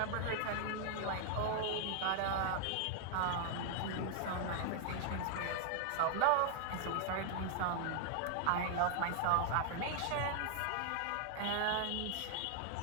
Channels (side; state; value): both; different; correlation 0.00